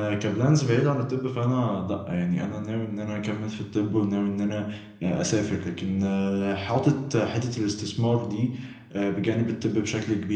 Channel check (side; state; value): both; identical; correlation 1.00